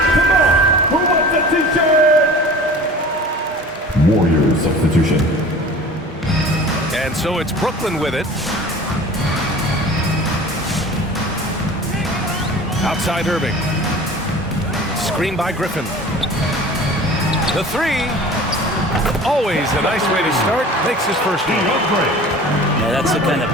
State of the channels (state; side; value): normal; both; correlation 0.41